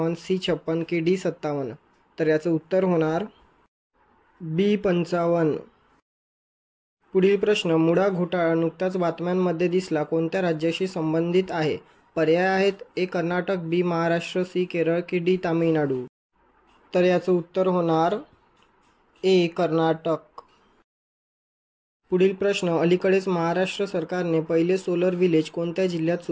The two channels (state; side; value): identical; both; correlation 1.00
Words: सी 56 की डी 57। तर याचं उत्तर होणार बी 55। पुढील प्रश्न, मुडा घोटाळा नुकताच बातम्यांमध्ये दिसला, कोणत्या राज्याशी संबंधित आहे? पर्याय आहेत ए कर्नाटक, बी महाराष्ट्र, सी केरळ की डी तामिळनाडू। तर याचं उत्तर होणार ए कर्नाटक। पुढील प्रश्न, अलीकडेच महाराष्ट्र सरकारने पहिले सोलर विलेज कोणत्या जिल्ह्यात